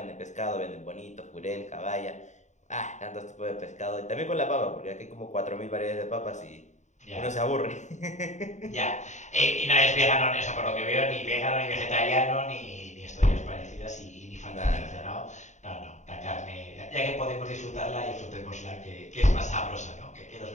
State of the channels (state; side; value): late; right; 0.34 ms